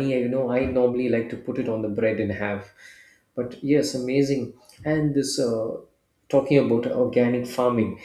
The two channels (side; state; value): both; identical; correlation 1.00